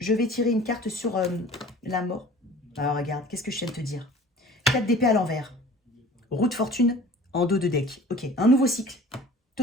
vais tirer une carte sur la mort. Alors regarde, qu'est-ce que je viens de te dire? 4 d'épée à l'envers. Roue de fortune en dos de deck. Ok, un nouveau cycle,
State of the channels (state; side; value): normal; both; correlation 0.45